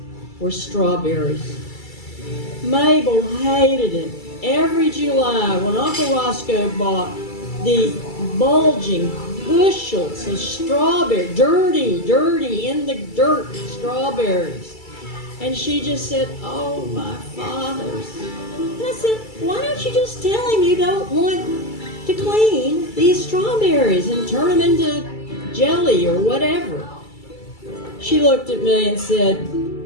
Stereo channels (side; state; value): right; late; 2.3 ms